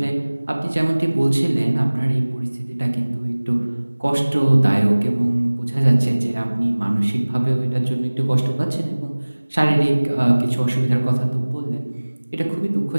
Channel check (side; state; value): both; inverted; correlation -1.00